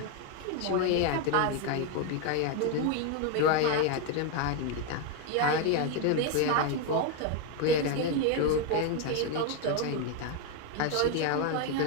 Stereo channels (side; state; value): both; different; correlation 0.01